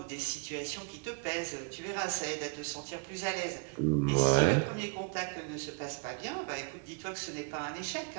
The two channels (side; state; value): left; quieter; 35.8 dB